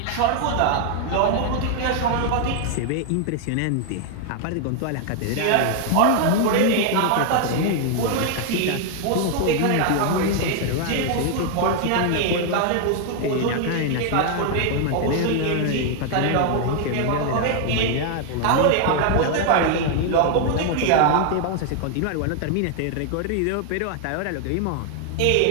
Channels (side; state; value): both; different; correlation 0.00